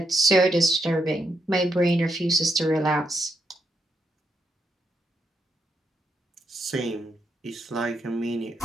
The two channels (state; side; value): normal; both; correlation 0.80